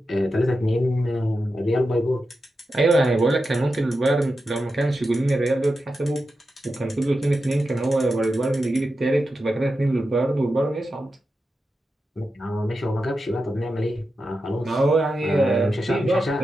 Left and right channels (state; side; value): normal; both; correlation 0.90